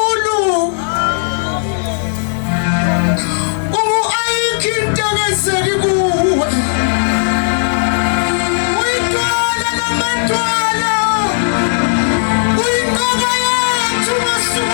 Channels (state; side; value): silent; right; digital silence